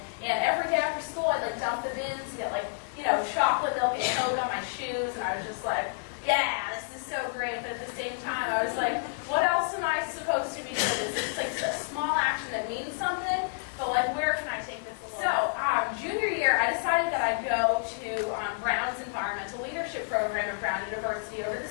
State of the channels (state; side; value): silent; right; 58 dB below the other